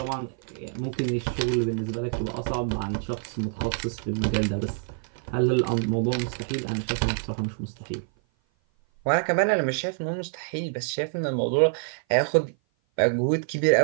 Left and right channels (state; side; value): silent; left; 56 dB below the other